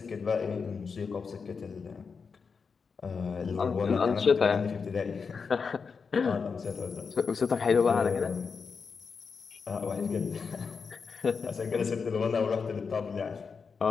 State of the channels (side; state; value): right; quieter; 5.4 dB